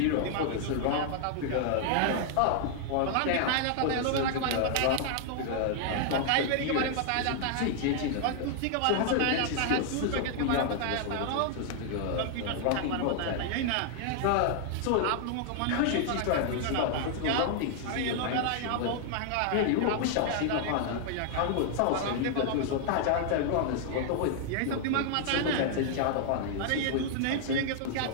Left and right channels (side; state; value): both; different; correlation 0.00